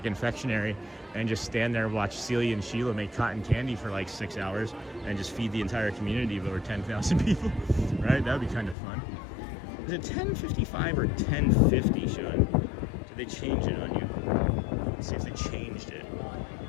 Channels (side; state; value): right; drops out; at 8.8 s